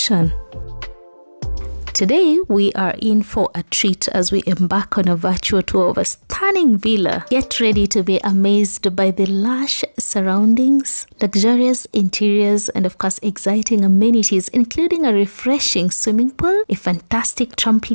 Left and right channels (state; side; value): inverted; both; correlation -1.00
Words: Today, we are in for a treat as we embark on a virtual tour of a stunning villa. Get ready to be amazed by the lush surroundings, luxurious interiors, and of course, exciting amenities, including a refreshing swimming pool, a fantastic